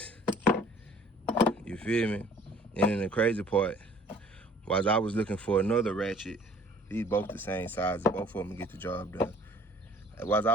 You feel me? And then the crazy part, while I was looking for another ratchet, these both the same size, both of them get the job done. While I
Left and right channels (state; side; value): normal; both; correlation 0.54